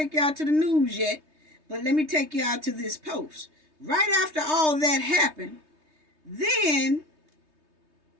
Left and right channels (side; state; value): left; late; 3.2 ms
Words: y'all to the news yet, but let me take y'all to this post. Right after all that happened, then